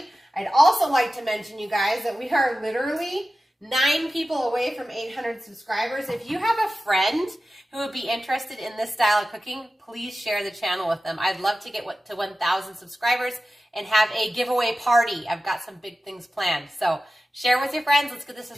I'd also like to mention, you guys, that we are literally 9 people away from 800 subscribers. If you have a friend who would be interested in this style of cooking, please share the channel with them. I'd love to get to 1,000 subscribers and have a giveaway party. I've got some big things planned. So share with your friends. Let's get the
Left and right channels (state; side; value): normal; both; correlation 0.94